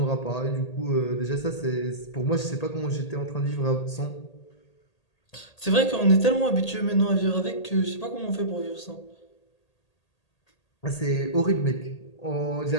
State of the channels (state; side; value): late; right; 1.8 ms